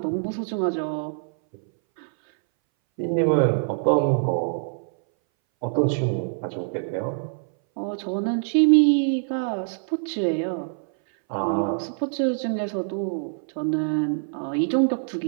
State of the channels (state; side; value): silent; left; 60 dB below the other